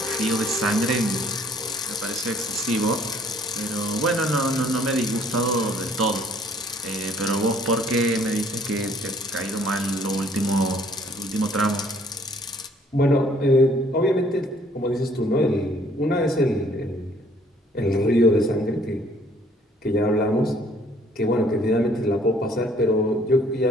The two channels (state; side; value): normal; both; correlation 0.60